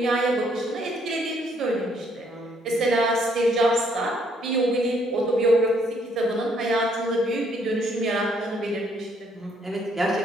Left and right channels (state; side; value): normal; both; correlation 0.68